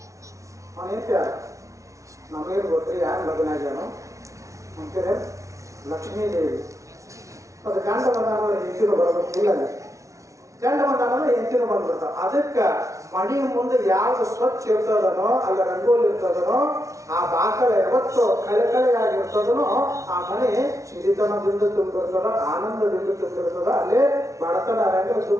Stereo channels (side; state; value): left; late; 0.15 ms